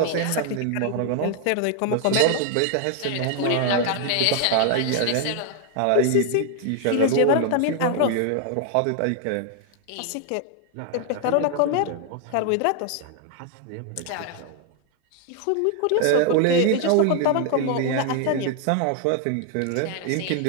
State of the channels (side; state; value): both; different; correlation 0.00